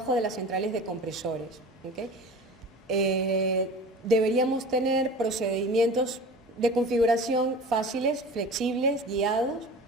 de las centrales de compresores. ¿Okay? Deberíamos tener procedimientos de configuración fáciles, flexibles, guiados.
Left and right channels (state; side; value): normal; both; correlation 0.38